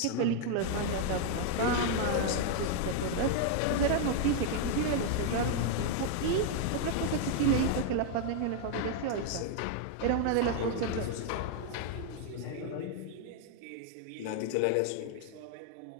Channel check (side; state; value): both; different; correlation 0.00